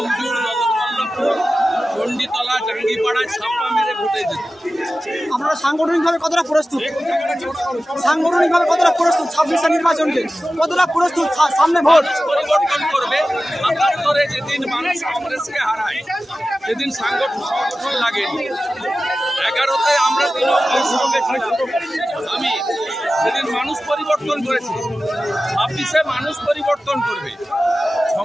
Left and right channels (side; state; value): both; normal; correlation 0.95